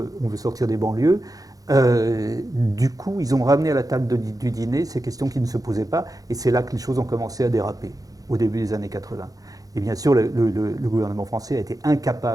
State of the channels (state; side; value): late; left; 0.17 ms